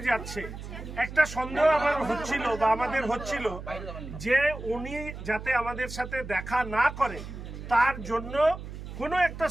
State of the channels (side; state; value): right; noise; hum, 10 dB below the sound